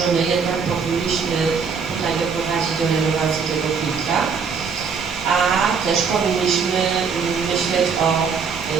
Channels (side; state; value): left; quieter; 5.8 dB